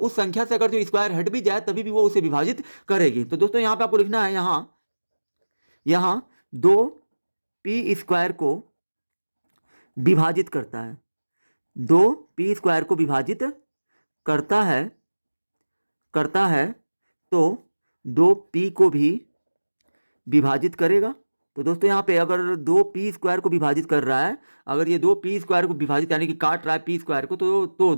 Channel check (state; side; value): inverted; both; correlation -1.00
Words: संख्या से अगर जो स्क्वायर हट भी जाए तभी भी वो उसे विभाजित करेगी। तो दोस्तों यहाँ पे आपको लिखना है यहाँ दो पी स्क्वायर को विभाजित करता है, दो पी स्क्वायर को विभाजित करता है तो दो पी को भी विभाजित करेगा। तो दोस्तों यहाँ पे अगर दो पी स्क्वायर को विभाजित कर रहा है, अगर ये दो पी स्क्वायर को विभाजित यानी कि काट रहा है पी स्क्वायर को, तो